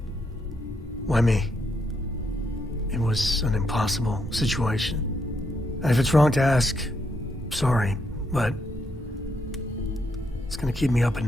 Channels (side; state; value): both; normal; correlation 0.77